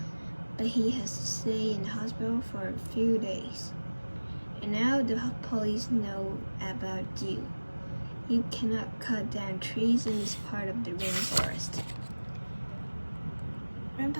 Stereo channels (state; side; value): inverted; both; correlation -1.00